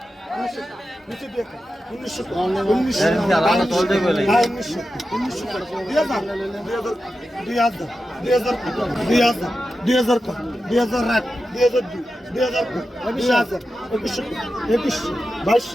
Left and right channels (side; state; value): both; normal; correlation 0.91